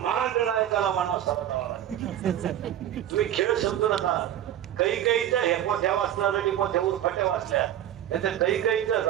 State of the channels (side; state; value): left; quieter; 11.4 dB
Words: नायकाला मानव सावधावा लागतो. तुम्ही खेळ समजू नका. काही हे मोठ्या वाचणार आणि मोठ्या उरफाट्या वाचल्या त्याच्या काही